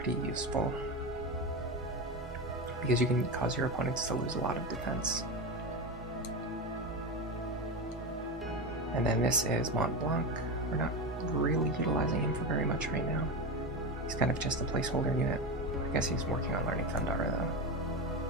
useful because you can cause your opponents to lose a lot of defense. And then this is Mont Blanc. We're not really utilizing him for very much right now. He's kind of just a placeholder unit. I guess he's working on learning Thundara though.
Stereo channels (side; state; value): both; normal; correlation 0.19